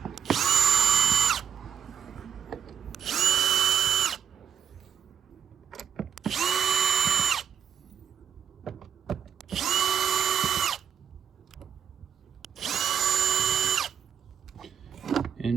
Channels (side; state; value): left; quieter; 8.4 dB